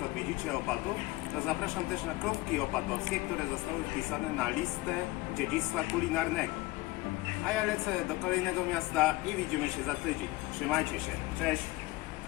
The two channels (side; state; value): right; quieter; 20.4 dB